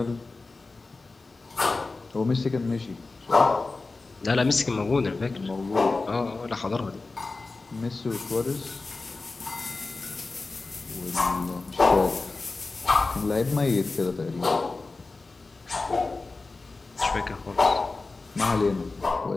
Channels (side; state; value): right; quieter; 3.6 dB